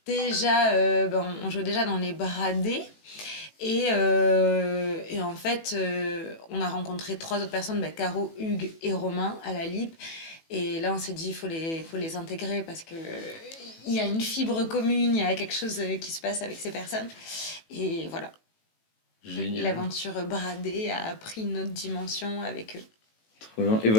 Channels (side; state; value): right; late; 18 ms